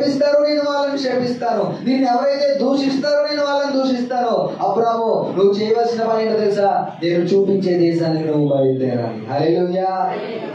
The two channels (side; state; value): both; identical; correlation 1.00